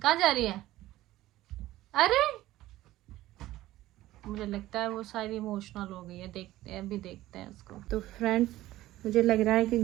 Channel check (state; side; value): quieter; left; 15.8 dB